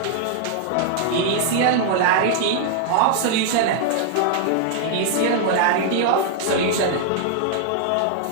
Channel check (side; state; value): both; different; correlation -0.01